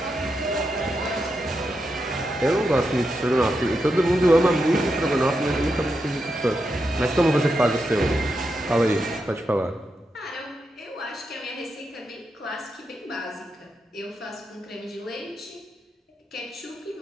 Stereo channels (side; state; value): both; normal; correlation 0.86